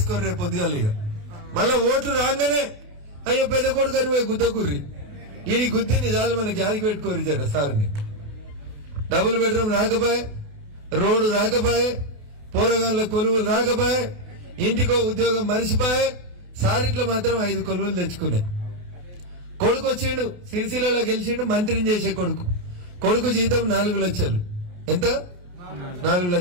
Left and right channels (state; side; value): late; left; 28 ms